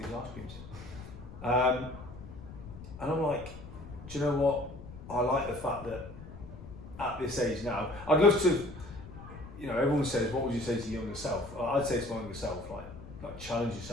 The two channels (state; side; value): noise; left; rumble, 14 dB below the sound